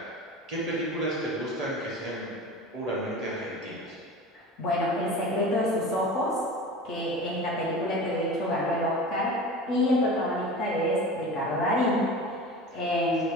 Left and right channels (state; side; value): normal; both; correlation 0.34